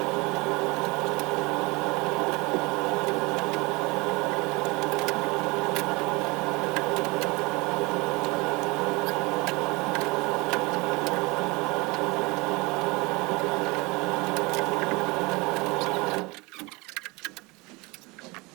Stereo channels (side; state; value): left; quieter; 25.1 dB